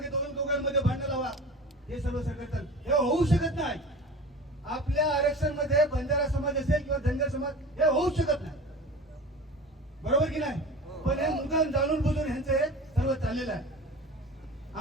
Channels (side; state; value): both; normal; correlation 0.36